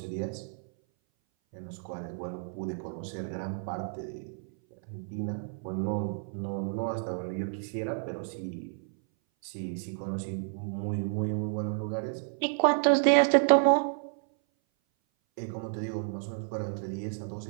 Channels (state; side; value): silent; left; 57 dB below the other